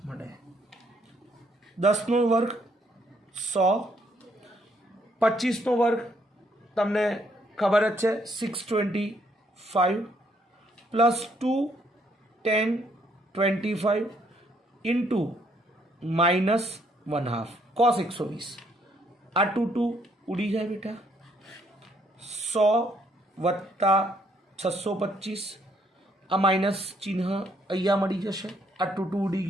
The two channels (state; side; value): normal; both; correlation 0.69